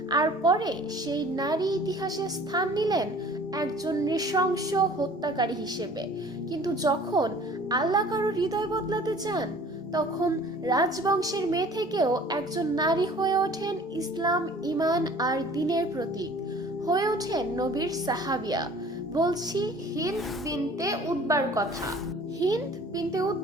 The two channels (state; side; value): normal; both; correlation 0.49